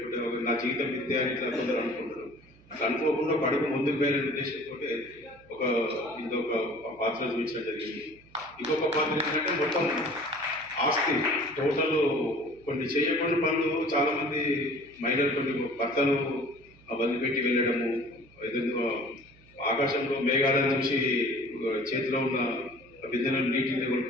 నా జీవితం విద్య అని ఇట్లా కొందరు అనుకుంటారు. అట్లా అనుకోకుండా ఒక అడుగు ముందుకు పోయే ఉద్దేశంతో ఇంకొక పాత్ర చూపించడం జరిగింది. ఇంకొక పాత్ర ఏంటంటే మొత్తం ఆస్తి టోటల్ కొన్ని చేయకూడని పనులు చాలామంది మహిళలు కొన్ని భర్తలు వదిలిపెట్టి వెళ్ళడము, ఏదైనా ఆకాశంలో మేఘాలను చూసి చేతిలో ఉన్న బిందెలను నీటిని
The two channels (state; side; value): noise; right; hum, 27 dB below the sound